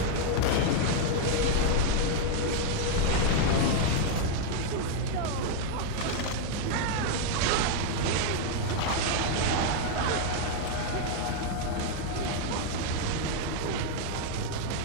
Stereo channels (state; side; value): different; both; correlation 0.00